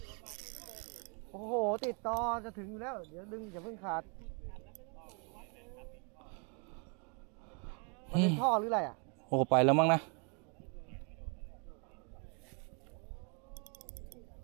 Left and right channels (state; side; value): quieter; left; 36.0 dB